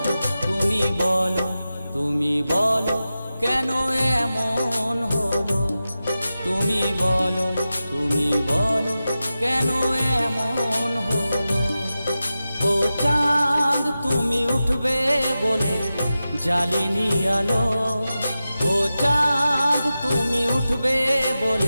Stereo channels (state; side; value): inverted; both; correlation -0.93